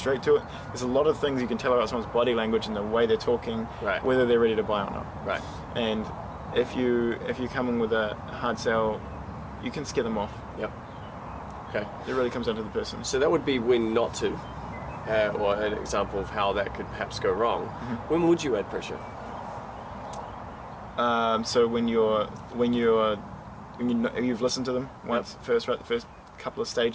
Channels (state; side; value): identical; both; correlation 1.00